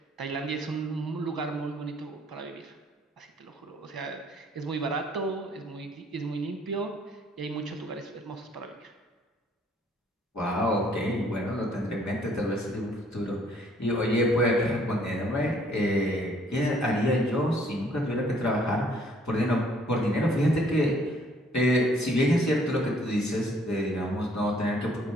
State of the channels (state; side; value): normal; both; correlation 0.62